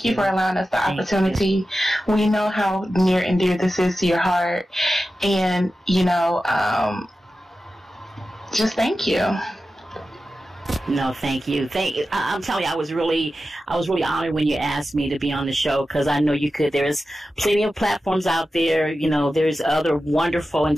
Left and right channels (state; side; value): normal; both; correlation 0.93